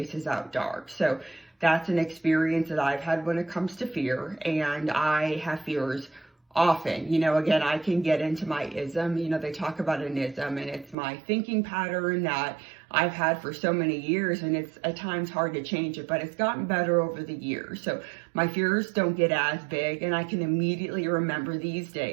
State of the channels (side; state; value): left; drops out; at 11.0 s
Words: out dark. So that's an experience that I've had when it comes to fear, and I have fears often. Again, I can get into my ism. They talk about an ism, and it's my thinking pattern that I've had for so many years, and it's at times hard to change it, but it's gotten better over the years. So my fears don't get as big, and I can immediately remember these